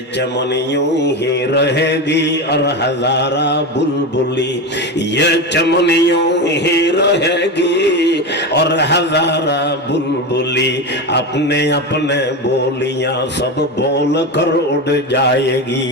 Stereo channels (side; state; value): both; normal; correlation 0.19